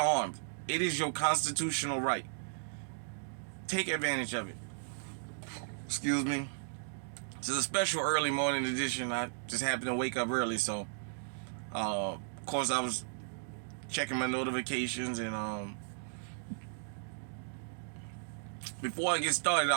It is your constitutional right. Take advantage of it. Excuse me. This is a special early morning edition. I just happened to wake up early, so of course I was checking my notifications and before I get started,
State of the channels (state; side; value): silent; left; digital silence